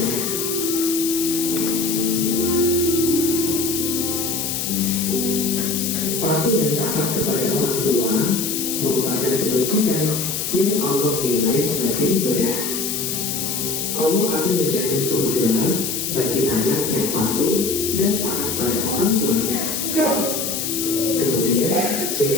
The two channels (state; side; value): noise; left; hiss, 2 dB below the sound